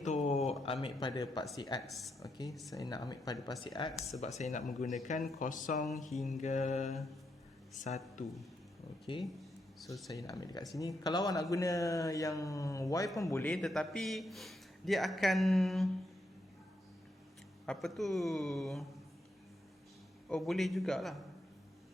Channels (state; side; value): normal; both; correlation 0.81